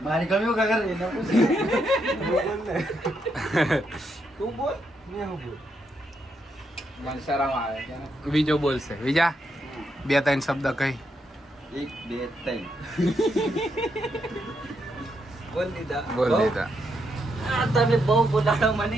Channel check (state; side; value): normal; both; correlation 0.79